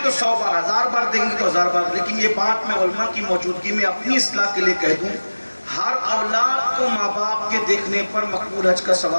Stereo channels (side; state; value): both; inverted; correlation -1.00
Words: تو 100 بار، 1000 بار دیکھیں گے تو 1000 بار. لیکن یہ بات میں علماء کی موجودگی میں اپنی اصلاح کے لیے کہہ دوں، ہر اولاد کو ماں باپ کے دیکھنے پر مقبول حج کا